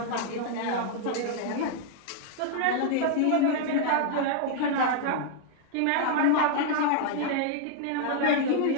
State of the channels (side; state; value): both; different; correlation -0.01